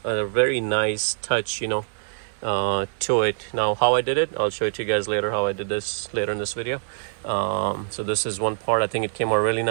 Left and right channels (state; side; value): silent; left; digital silence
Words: a very nice touch to it. Now how I did it, I'll show it to you guys later how I did this later in this video. So this is one part. I think it came out really